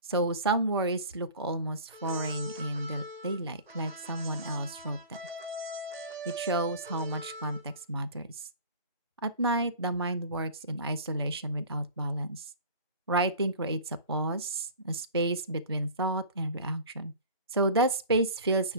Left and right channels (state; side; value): inverted; both; correlation -0.40